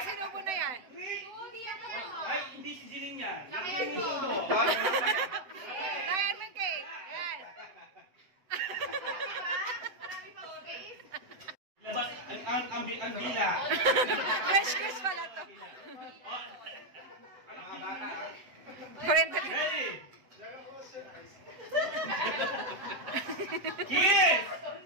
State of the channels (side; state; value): left; late; 7.9 ms